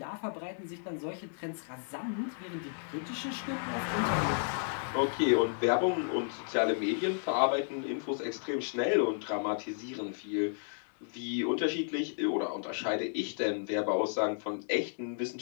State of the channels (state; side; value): silent; right; digital silence